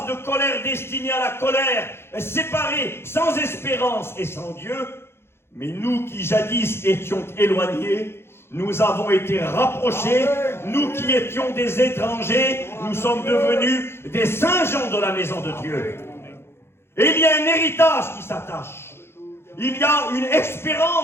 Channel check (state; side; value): late; right; 0.12 ms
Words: de colère destinés à la colère, séparés, sans espérance et sans Dieu. Mais nous qui jadis étions éloignés, nous avons été rapprochés. Nous qui étions des étrangers, nous sommes devenus des saints gens de la maison de Dieu. Et il y a un héritage qui s'attache. Il y a une